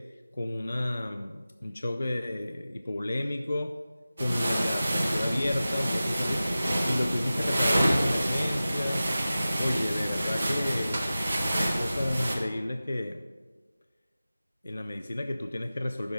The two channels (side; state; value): both; inverted; correlation -0.96